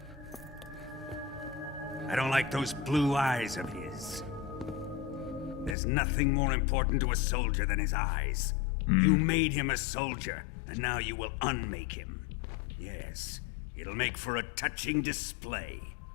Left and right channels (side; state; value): right; drops out; at 5.8 s